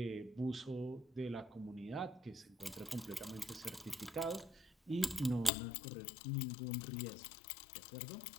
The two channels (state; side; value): drops out; right; at 5.5 s